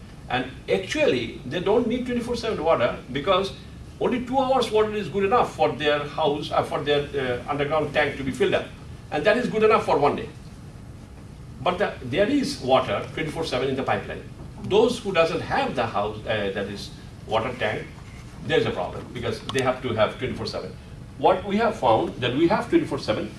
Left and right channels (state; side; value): identical; both; correlation 1.00